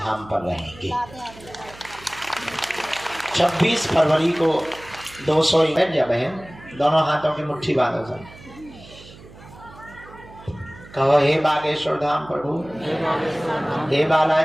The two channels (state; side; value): noise; right; hum, 20 dB below the sound